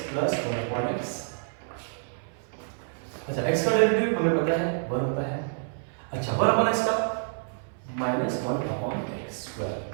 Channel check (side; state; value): left; silent; 57 dB below the other